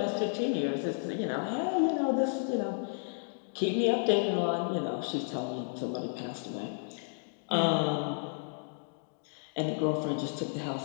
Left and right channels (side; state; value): right; silent; digital silence